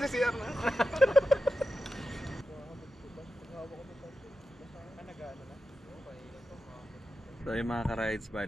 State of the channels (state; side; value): normal; both; correlation 0.91